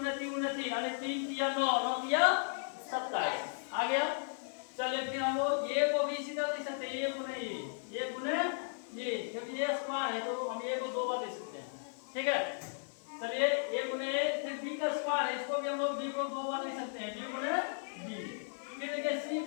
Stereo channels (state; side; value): silent; right; digital silence